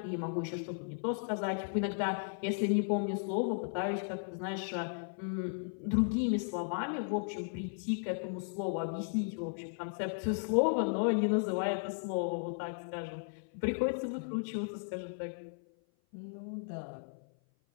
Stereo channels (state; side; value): silent; right; 54 dB below the other